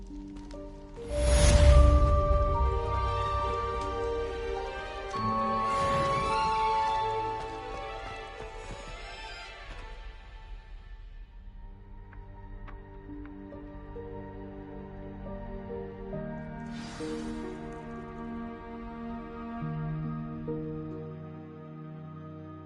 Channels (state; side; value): identical; both; correlation 1.00